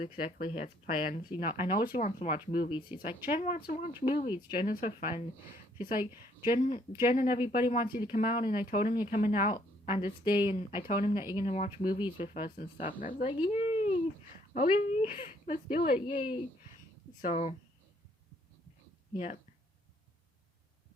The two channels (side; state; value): both; normal; correlation 0.66